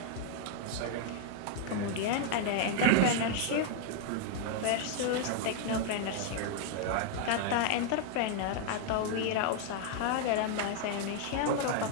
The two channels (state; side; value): different; both; correlation 0.00